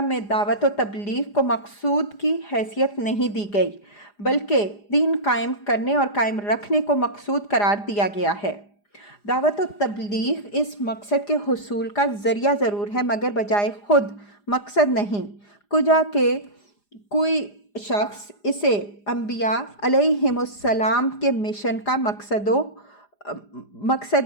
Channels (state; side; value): late; right; 4.9 ms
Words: میں دعوت و تبلیغ کو مقصود کی حیثیت نہیں دی گئی بلکہ دین قائم کرنے اور قائم رکھنے کو مقصود قرار دیا گیا ہے۔ دعوت و تبلیغ اس مقصد کے حصول کا ذریعہ ضرور ہے مگر بجائے خود مقصد نہیں، کجا کہ کوئی شخص اسے انبیاء علیہم السلام کے مشن کا مقصد